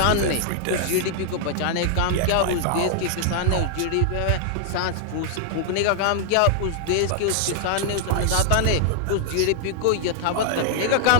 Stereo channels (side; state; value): both; different; correlation 0.00